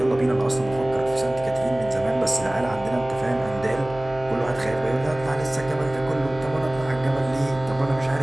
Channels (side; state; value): right; noise; hum, 16 dB below the sound